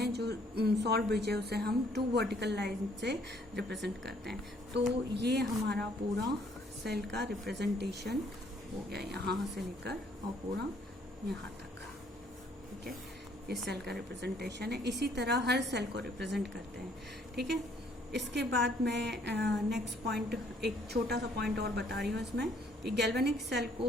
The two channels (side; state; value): both; normal; correlation 0.64